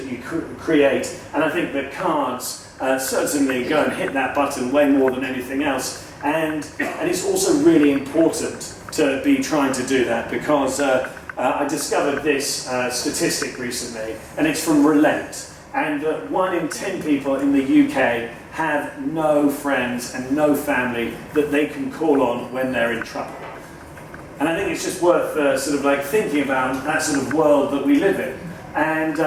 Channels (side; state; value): both; identical; correlation 1.00